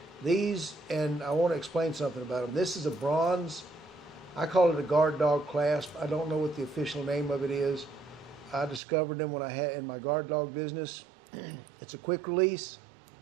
These, and I want to explain something about them. This is a bronze. I call it a guard dog clasp. I don't know what the official name of it is. I discovered them when I had in my guard dog business. It's a quick release.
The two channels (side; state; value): left; drops out; at 8.8 s